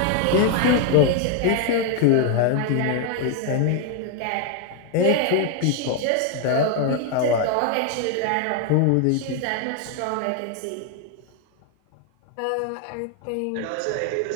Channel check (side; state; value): both; different; correlation 0.01